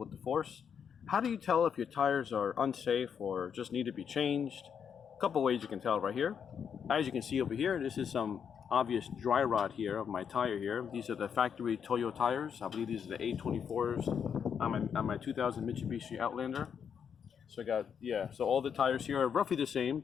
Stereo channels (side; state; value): right; quieter; 7.4 dB